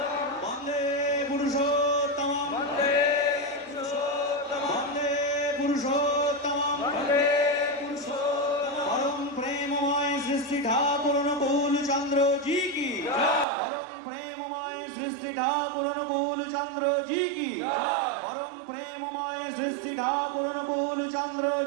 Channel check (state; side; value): drops out; left; at 13.5 s